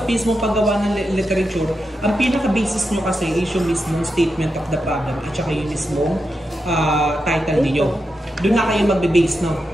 mismong paggawa ng literature, ang pinaka-basis nyo kasi is yung mismong statement of the problem at saka yung mismong title ninyo. Doon na kayo magbe-base, no?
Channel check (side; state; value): both; normal; correlation 0.87